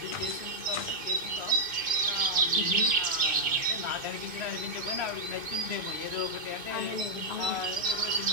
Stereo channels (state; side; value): late; left; 2.5 ms